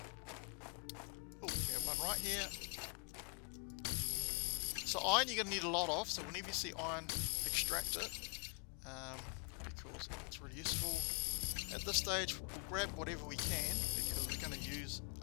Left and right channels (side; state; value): right; quieter; 38.4 dB